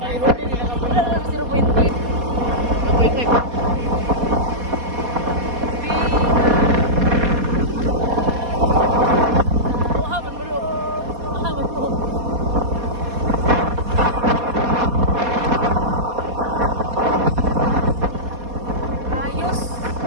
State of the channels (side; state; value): left; late; 4.2 ms